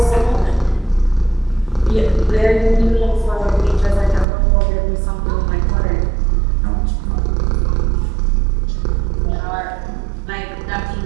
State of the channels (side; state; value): left; drops out; at 4.2 s